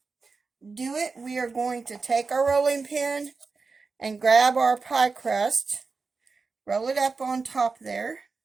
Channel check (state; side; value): quieter; left; 4.4 dB